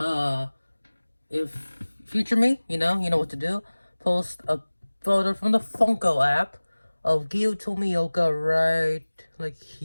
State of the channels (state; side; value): inverted; both; correlation -1.00